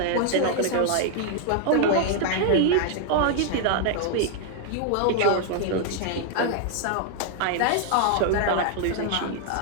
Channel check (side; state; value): both; different; correlation 0.00